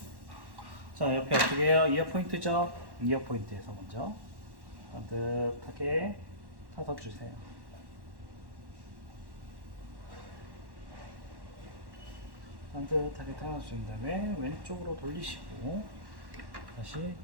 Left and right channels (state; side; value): late; left; 1.1 ms